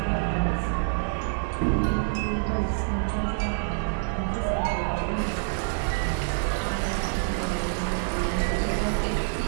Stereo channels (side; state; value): left; silent; digital silence